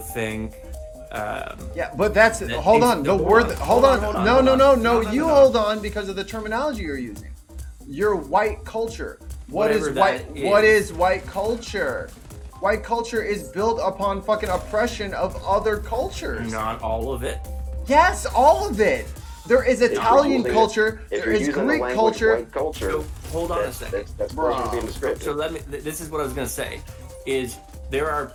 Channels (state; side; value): identical; both; correlation 1.00